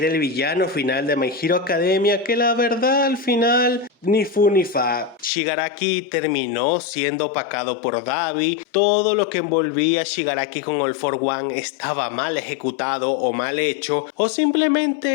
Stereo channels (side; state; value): right; drops out; at 5.3 s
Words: el villano final de My Hero Academia, que la verdad al final ni fu ni fa. Shigaraki terminó siendo opacado por Dabi. Todo lo que envolvía a Shigaraki con All for One estaba mal ejecutado o mal hecho, o